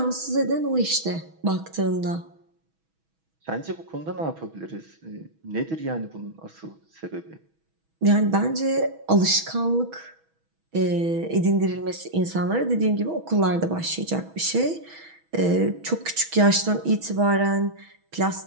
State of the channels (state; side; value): late; left; 6.2 ms